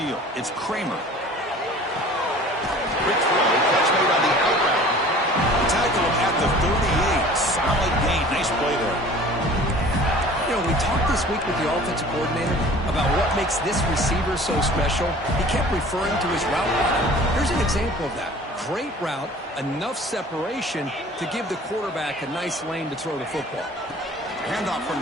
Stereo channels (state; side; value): normal; both; correlation 0.46